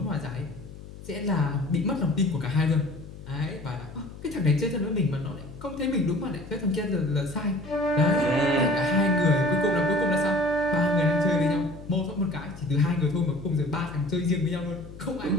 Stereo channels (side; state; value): left; noise; hum, 15 dB below the sound